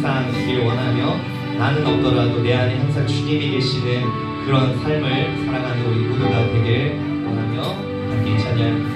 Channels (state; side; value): identical; both; correlation 1.00